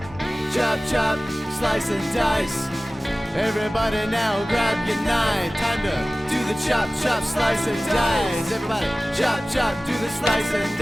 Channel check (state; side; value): normal; both; correlation 0.97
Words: Chop, chop. Slice and dice. Everybody now grab your knife. Time to do the chop, chop, slice and dice. Everybody chop, chop, do the slice and